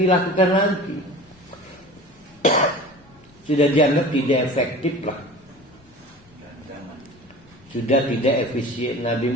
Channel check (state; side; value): noise; left; rumble, 30 dB below the sound